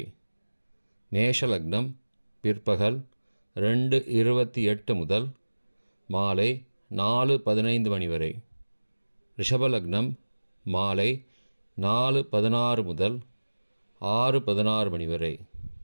மேஷ லக்னம் பிற்பகல் 2:28 முதல் மாலை 4:15 மணி வரை. ரிஷப லக்னம் மாலை 4:16 முதல் 6:16 மணி வரை.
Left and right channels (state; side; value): inverted; both; correlation -1.00